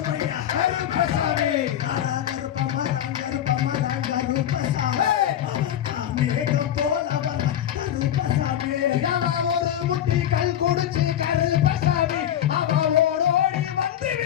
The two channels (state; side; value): quieter; right; 10.8 dB